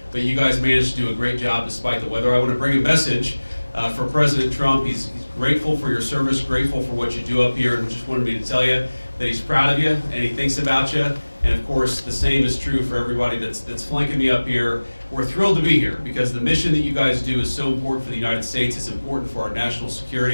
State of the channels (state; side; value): inverted; both; correlation -1.00